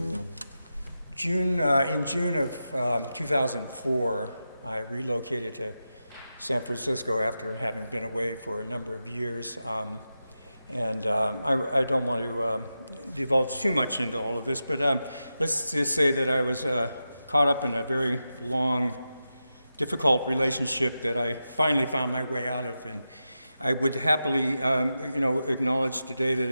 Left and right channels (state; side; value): inverted; both; correlation -0.91